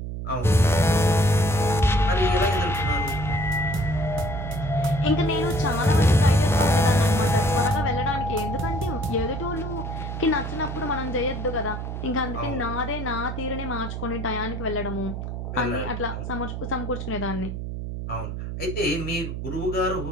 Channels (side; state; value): right; noise; hum, 6 dB below the sound